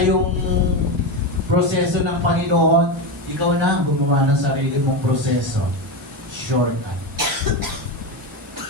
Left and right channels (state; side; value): normal; both; correlation 0.15